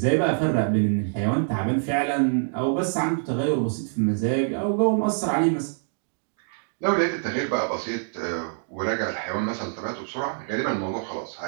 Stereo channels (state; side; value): silent; left; digital silence